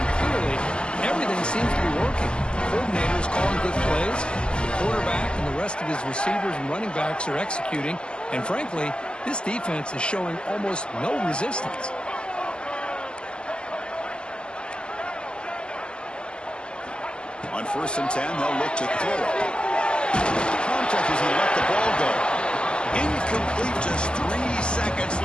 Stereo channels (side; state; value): right; late; 0.049 ms